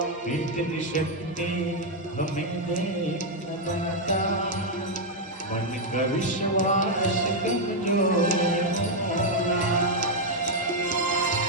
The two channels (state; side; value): normal; both; correlation 0.00